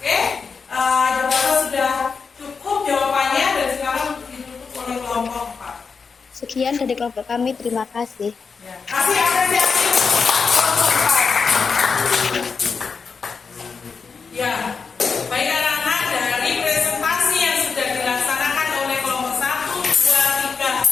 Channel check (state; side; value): quieter; right; 5.3 dB